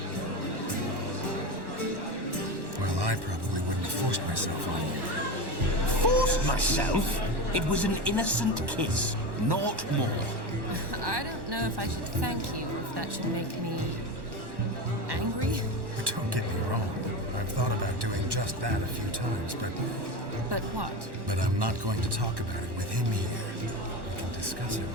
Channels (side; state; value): left; late; 1.1 ms